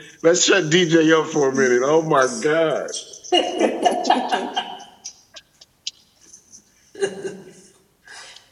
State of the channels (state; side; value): identical; both; correlation 1.00